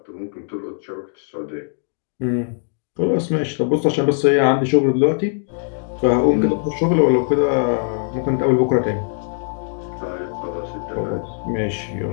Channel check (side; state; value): right; silent; digital silence